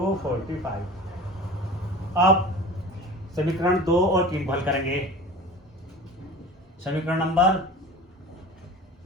45। अब समीकरण 2 और 3 को हल करेंगे। समीकरण नंबर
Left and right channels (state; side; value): normal; both; correlation 0.37